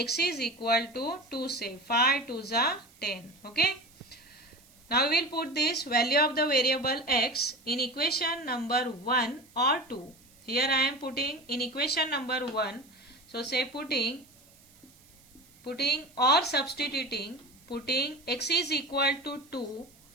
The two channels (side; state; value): right; noise; hiss, 27 dB below the sound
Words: is equal to 2, say 5 2s are 10. Okay. Now we will put this value of the variable x in equation number 1 or 2. Here I am putting in equation number 1. So say putting or substituting, putting x is equal to 2